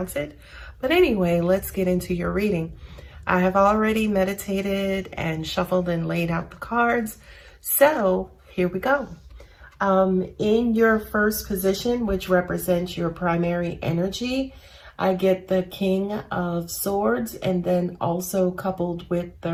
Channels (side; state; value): both; identical; correlation 1.00